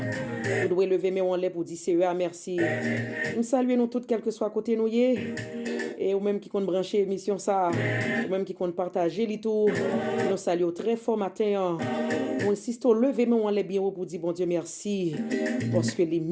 devez lever mais on lève pour dire Seigneur merci. Nous saluons nous toutes quel que soit côté nous y et ou même qui compte brancher émission ça, ou même qui compte partager les tout. Nous saluons très fort matin. On insiste au lever, mais on lève bien haut pour dire bon Dieu merci, parce que les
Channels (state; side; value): identical; both; correlation 1.00